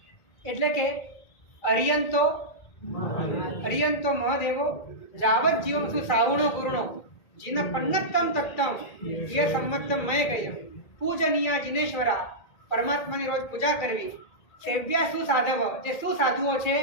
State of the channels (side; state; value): right; late; 1.8 ms